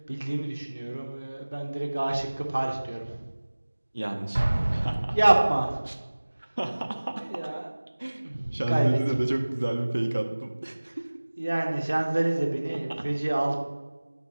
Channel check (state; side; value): inverted; both; correlation -1.00